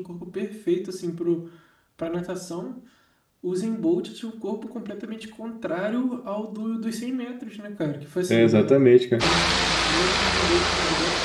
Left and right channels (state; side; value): identical; both; correlation 1.00